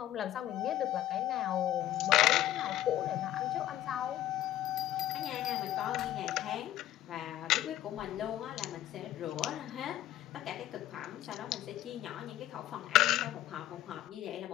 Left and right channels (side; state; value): right; quieter; 13.4 dB